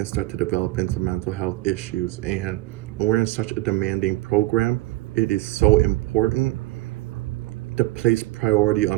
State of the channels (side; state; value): left; quieter; 17.6 dB